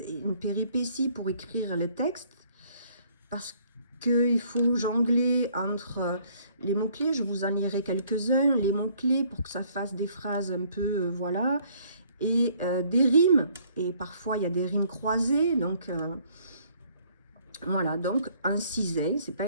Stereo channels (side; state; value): both; inverted; correlation -0.62